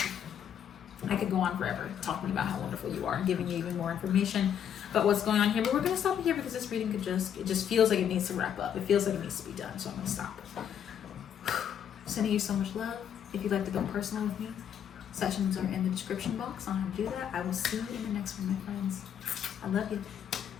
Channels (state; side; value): quieter; right; 9.0 dB